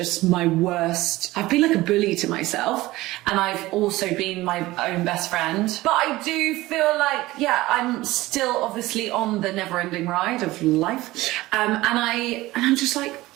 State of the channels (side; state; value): left; quieter; 18.3 dB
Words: my worst. I've been like a bully to myself, and I've also been my own best friend. But I do feel like, yeah, I'm still obviously on the never-ending ride of life, and I'm just like,